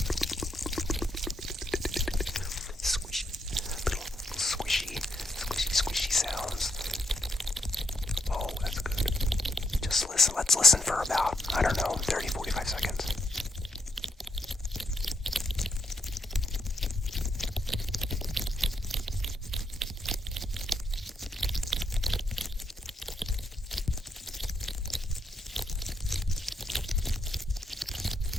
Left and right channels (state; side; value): normal; both; correlation 0.78